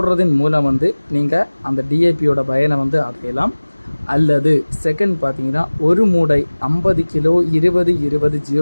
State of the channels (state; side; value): inverted; both; correlation -1.00